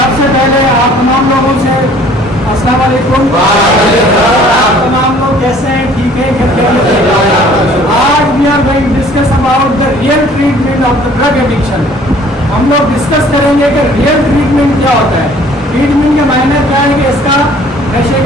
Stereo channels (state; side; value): normal; both; correlation 0.54